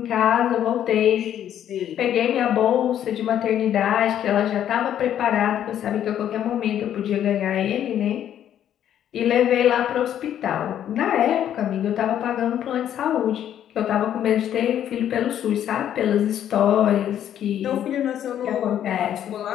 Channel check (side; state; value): right; quieter; 10.5 dB